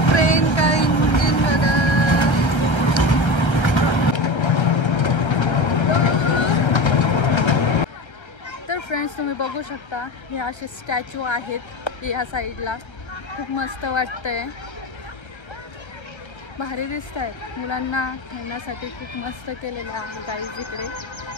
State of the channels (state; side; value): late; right; 1.3 ms